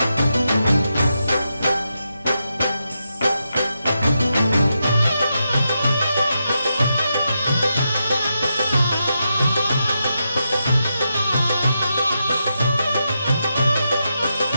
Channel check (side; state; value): both; inverted; correlation -0.86